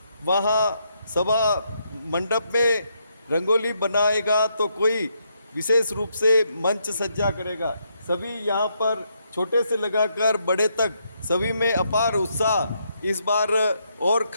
वहाँ सभा मंडप में रंगोली बनाएगा तो कोई विशेष रूप से मंच सज्जा करेगा। सभी यहाँ पर छोटे से लगाकर बड़े तक सभी में अपार उत्साह इस बार और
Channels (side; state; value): both; inverted; correlation -0.77